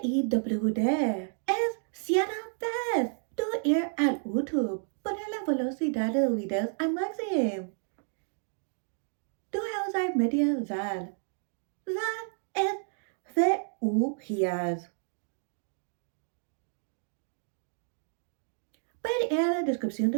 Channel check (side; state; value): left; silent; 57 dB below the other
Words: es cierta vez tú ir al YouTube, poner la velocidad de los videos al máximo. Tú usar media zal. Zal es VU-gias. Puede ir a la descripción